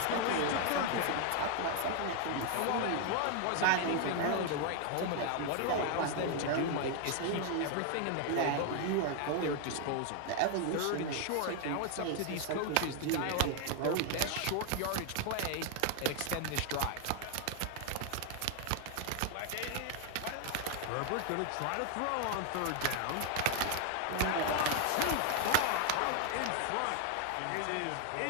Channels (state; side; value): different; both; correlation 0.00